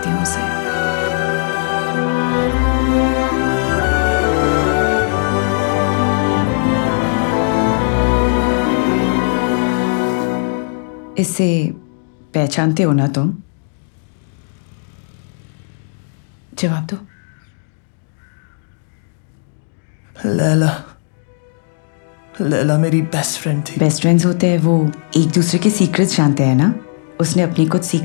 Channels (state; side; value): silent; right; digital silence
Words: हूँ उसे। इससे पहचानते हो ना तुम? जवाब दो। लैला, लैला मेरी बेस्ट फ्रेंड थी। बेस्ट फ्रेंड्स होते हैं वो एक दूसरे के सीक्रेट्स जानते हैं ना? उसने अपनी कुछ